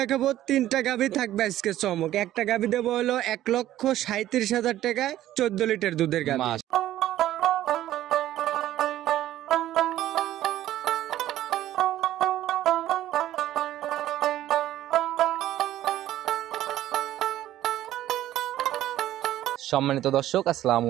3টা গাভী থাকবে আজকে চমক। একটা গাভী দেবো হলো 1,37,000 টাকায় 14 লিটার দুধের গাভী। সম্মানিত দর্শক, আসসালামু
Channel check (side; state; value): left; quieter; 13.5 dB